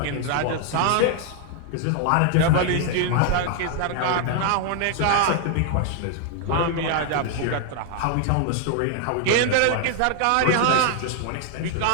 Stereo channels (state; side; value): different; both; correlation 0.00